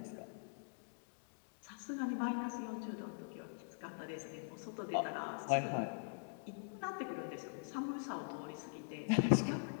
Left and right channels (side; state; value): right; silent; digital silence